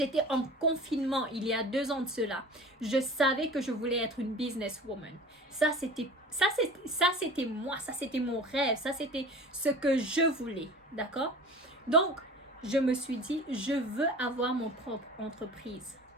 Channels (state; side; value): normal; both; correlation 0.39